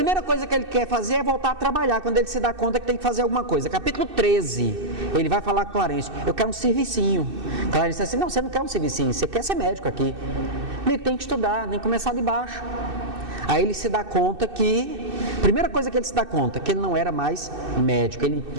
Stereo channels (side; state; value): left; late; 2.6 ms